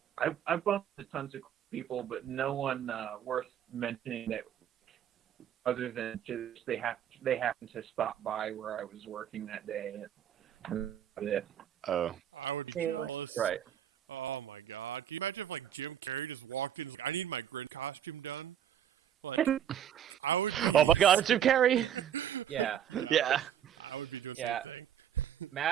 bumped into tons of people, but no one worth mentioning that other than just they happen to stop by where I was working that day. And that's it. Oh. Right. Oh my God, it's Jim Carrey. Yeah. Yeah. Yeah.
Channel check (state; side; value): quieter; left; 10.0 dB